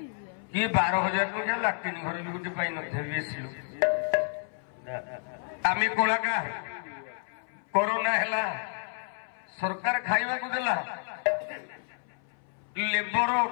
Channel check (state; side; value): silent; right; 58 dB below the other